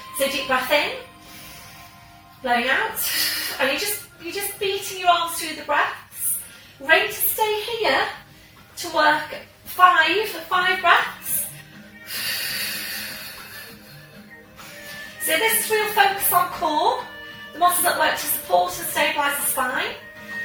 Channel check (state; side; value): identical; both; correlation 1.00